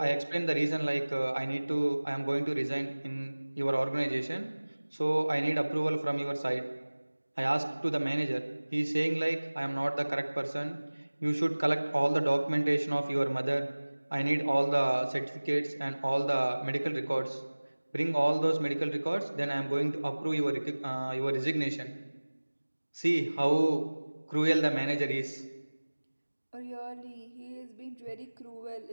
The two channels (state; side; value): inverted; both; correlation -1.00